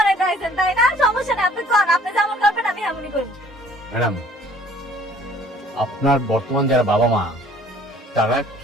আইছেন তাই না? সমস্যা নেই, আপনি কোন, আপনি যেমন করবেন আমি এমনই করব। ম্যাডাম, আপনার বর্তমান যারা বাবা মা, তারা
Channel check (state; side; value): normal; both; correlation 0.55